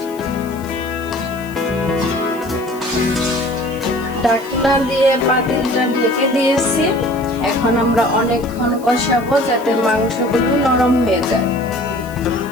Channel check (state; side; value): noise; left; hiss, 22 dB below the sound